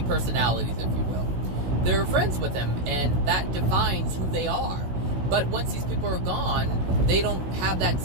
personalities, if you will. They're friends with them, and that defines who they are. But once these people are gone, they don't have that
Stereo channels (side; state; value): left; late; 16 ms